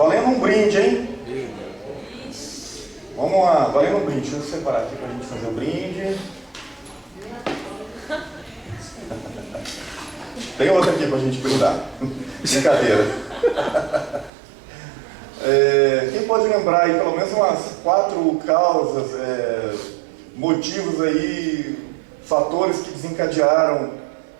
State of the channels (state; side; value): drops out; left; at 14.3 s